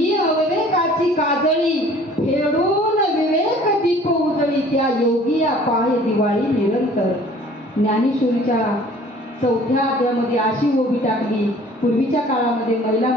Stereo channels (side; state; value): both; normal; correlation 0.51